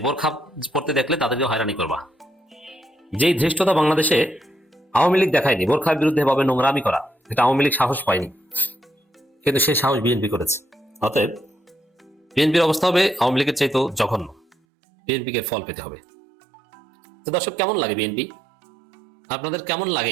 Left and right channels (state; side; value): drops out; left; at 14.6 s